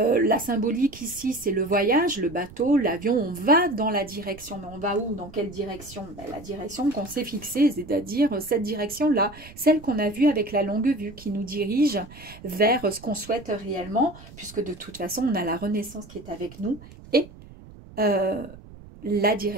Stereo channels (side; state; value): right; noise; rumble, 19 dB below the sound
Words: symbolique ici, c'est le voyage, le bateau, l'avion, on va dans la direction. Mais on va où? Dans quelle direction? Ben, la direction qu'on s'est fixée, c'est-à-dire cette direction-là, celle qu'on a vue avec la longue vue, qui nous dirige vers ce qu'on souhaite réellement, puisque de toute façon, on a la Renaissance qui est avec nous, et la